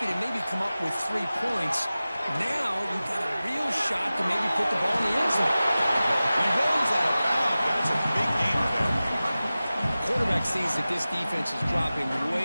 to maybe come up with 3 points, now you've got a real shot to maybe put the ball in the end zone. He rolls out of bounds. That's a big game for them. Quarterback sees that this defense is dropping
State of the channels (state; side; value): inverted; both; correlation -0.96